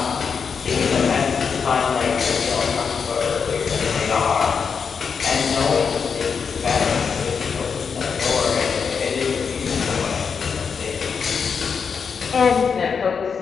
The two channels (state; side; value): quieter; right; 6.1 dB